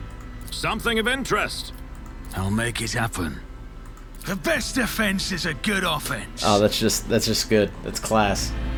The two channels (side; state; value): both; identical; correlation 1.00